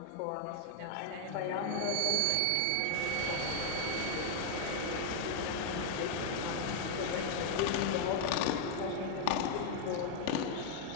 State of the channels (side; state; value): both; different; correlation -0.01